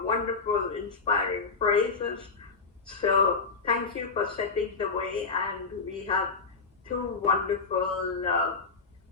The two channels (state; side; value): quieter; right; 4.5 dB